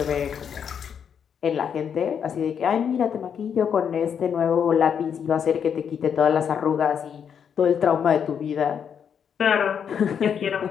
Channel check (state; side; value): quieter; right; 7.7 dB